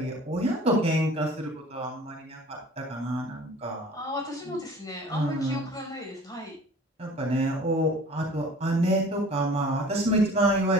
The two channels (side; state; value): both; normal; correlation 0.46